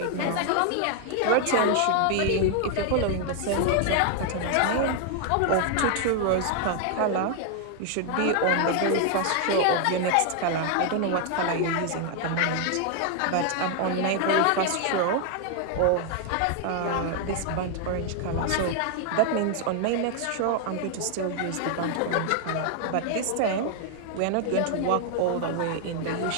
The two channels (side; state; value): both; different; correlation 0.00